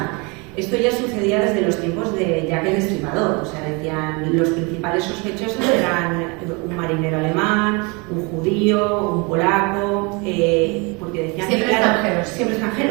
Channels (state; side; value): quieter; left; 29.4 dB